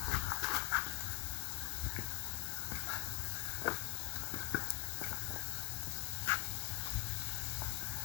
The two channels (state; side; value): quieter; right; 22.1 dB